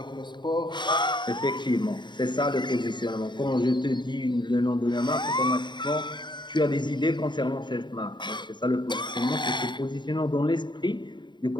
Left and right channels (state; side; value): late; right; 0.22 ms